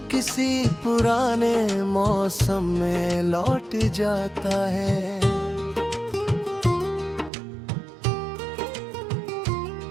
किसी पुराने मौसम में लौट जाता है।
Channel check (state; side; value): drops out; left; at 7.3 s